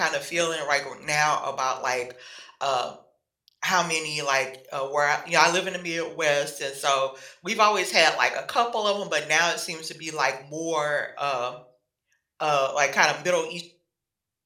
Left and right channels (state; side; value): identical; both; correlation 1.00